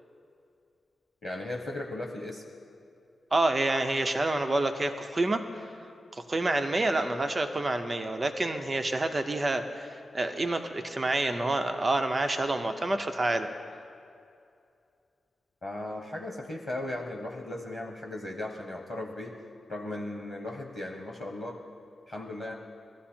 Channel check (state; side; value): normal; both; correlation 0.93